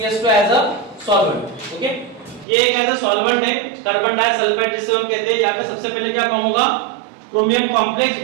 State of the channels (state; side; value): drops out; left; at 2.5 s